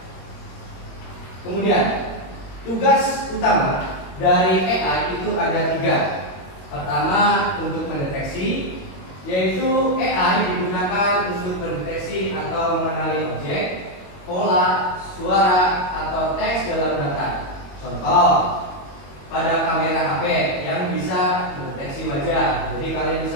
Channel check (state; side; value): late; right; 21 ms